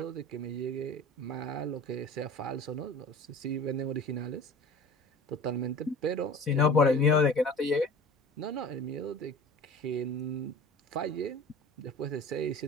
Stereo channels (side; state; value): both; normal; correlation 0.40